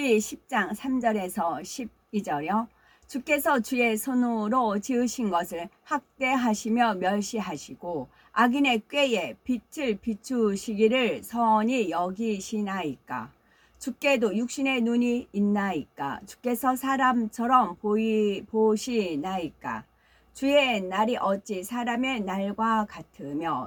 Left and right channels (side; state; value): both; identical; correlation 1.00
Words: 10장 3절에서 12절이요. 주께서 주의 손으로 지으신 것을 학대하시며 멸시하시고 악인의 꾀에 빛을 비추시기를 선히 여기시나이까. 주께도 육신의 눈이 있나이까. 주께서 사람처럼 보시나이까. 주의 날이 어찌 사람의 날과